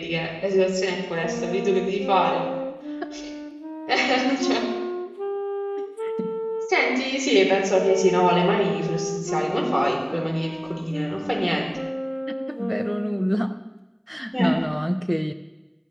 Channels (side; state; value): both; identical; correlation 1.00